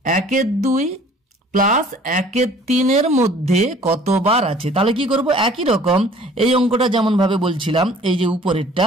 1/2 প্লাস 1/3 এর মধ্যে কতবার আছে। তাহলে কি করব? একই রকম এই অঙ্কটা যেমন ভাবে বলছিলাম, এই যে উপরেরটা,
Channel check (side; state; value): both; normal; correlation 0.52